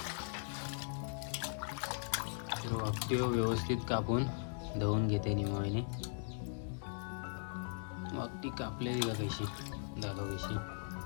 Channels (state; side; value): silent; right; digital silence